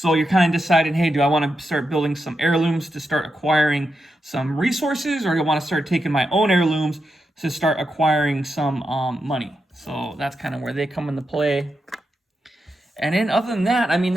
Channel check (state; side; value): normal; both; correlation 0.86